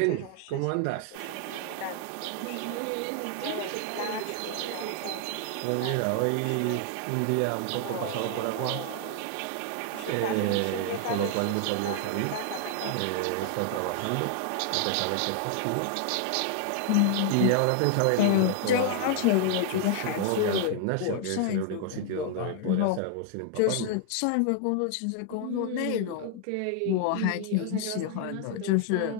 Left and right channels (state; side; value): different; both; correlation 0.00